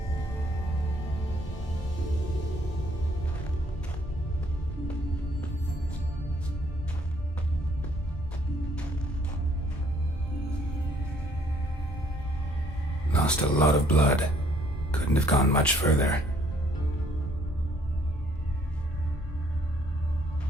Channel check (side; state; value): both; normal; correlation 0.64